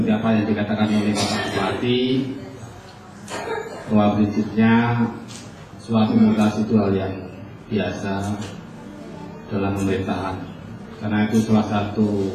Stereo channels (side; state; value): both; identical; correlation 1.00